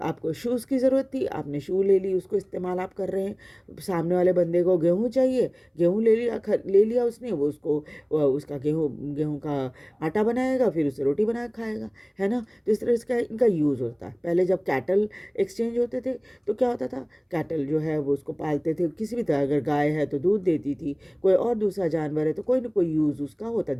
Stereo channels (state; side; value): identical; both; correlation 1.00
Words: शूज़ की ज़रूरत थी, आपने शू ले ली, उसको इस्तेमाल आप कर रहे हैं। सामने वाले बंदे को गेहूँ चाहिए, गेहूँ ले लिया उसने, वो उसका गेहूँ का आटा बनाएगा, फिर उससे रोटी बना के खाएगा, है ना? तो इस तरह इसका इनका यूज़ होता है। पहले जब कैटल एक्सचेंज होते थे तो क्या होता था? कैटल जो है वो उसको पालते थे, किसी भी तरह, अगर गाय है तो दूध देती थी, कोई और दूसरा जानवर है तो कोई ना कोई यूज़ उसका होता है,